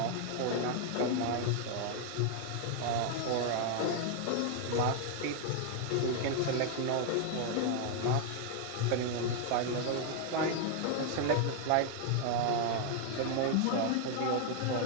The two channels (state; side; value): different; both; correlation 0.00